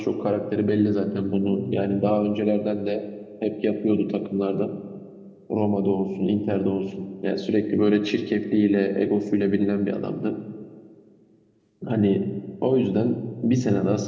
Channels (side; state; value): both; identical; correlation 1.00